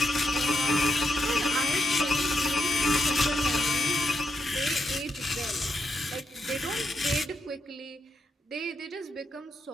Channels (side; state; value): both; normal; correlation 0.82